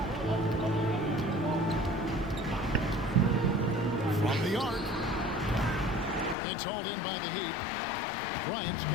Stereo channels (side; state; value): right; drops out; at 6.4 s